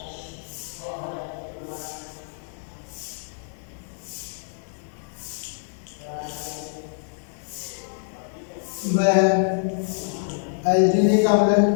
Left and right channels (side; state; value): right; silent; digital silence